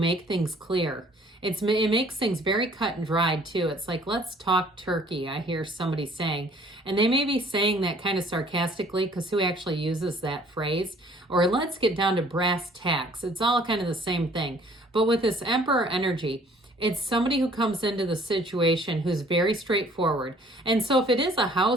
things clear. It makes things very cut and dried too. It's like, let's talk turkey, I hear somebody saying. And they may be saying that kind of sarcastically, because who actually uses that phrase? Or let's get down to brass tacks. It's all kind of the same thing. But with this Emperor energy, it's somebody who comes into the situation who's very straightforward. And so if it is a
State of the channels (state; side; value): normal; both; correlation 0.56